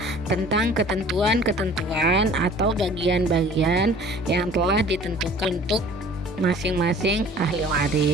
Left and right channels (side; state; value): both; normal; correlation 0.49